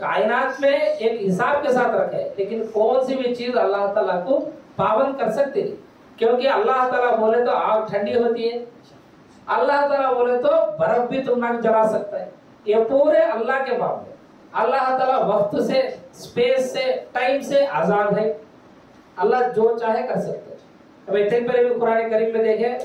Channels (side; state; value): both; identical; correlation 1.00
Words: میں ایک حساب کے ساتھ رکھے لیکن کون سی بھی چیز اللہ تعالیٰ کو پابند کر سکتے نہیں کیونکہ اللہ تعالیٰ بولے تو آگ ٹھنڈی ہوتی ہے، اللہ تعالیٰ بولے تو برف بھی تم نہ جلا سکتا ہے. یہ پورے اللہ کے معاملے. اللہ تعالیٰ وقت سے اسپیس سے ٹائم سے آزاد ہے. اللہ جو چاہے کر سکتے. اب اتنے پہلے بھی قرآن کریم میں دیکھیں